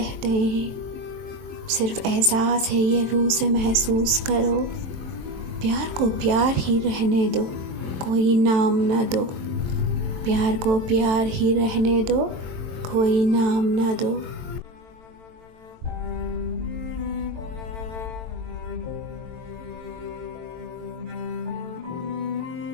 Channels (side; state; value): left; late; 22 ms